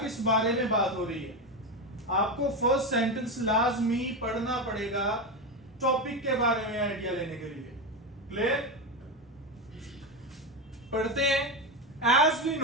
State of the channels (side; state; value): both; normal; correlation 0.15